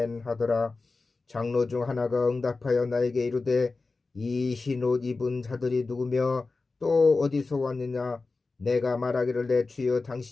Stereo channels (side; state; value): right; quieter; 3.8 dB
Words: 하더라. 장로 중 하나가 응답하여 나에게 이르되 이 흰 옷 입은 자들이 누구며 또 어디서 왔느냐. 내가 말하기를 내 주여